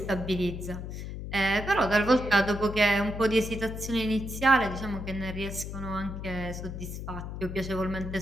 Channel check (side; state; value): left; noise; hum, 7 dB below the sound